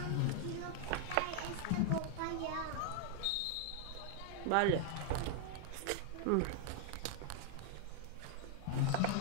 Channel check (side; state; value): both; different; correlation 0.00